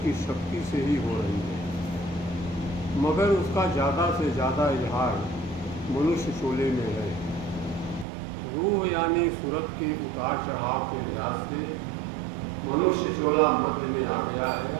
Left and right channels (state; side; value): drops out; left; at 8.1 s